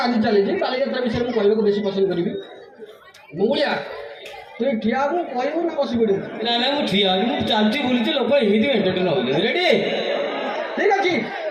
ଆଜି ଚାଲିଛି ବାଲିଯାତ୍ରା ବିଷୟରେ ମୁଁ କହିବାକୁ ବେଶୀ ପସନ୍ଦ କରିବି ମଙ୍ଗୁଳିଆ ତୁ ଠିଆ ହବୁ କହିବୁ ନା ବସି ପଡ଼ିବୁ ନା ନା ମୁଁ ଠିଆ ଅଛି ମୁଁ ଚାଲୁଛି ବୁଲୁଛି ଲୋକ ଏମିତି ଏଣ୍ଟରଟେନ୍ ହେଉଛନ୍ତି ରେଡ଼ି ଠିକ୍ ଅଛି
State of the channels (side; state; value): both; identical; correlation 1.00